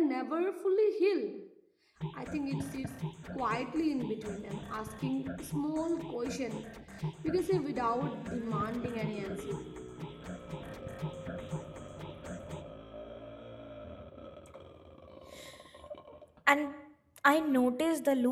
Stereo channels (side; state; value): both; identical; correlation 1.00